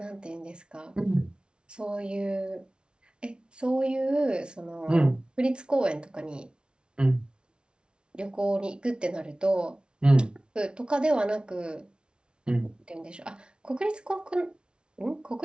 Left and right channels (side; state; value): left; late; 0.056 ms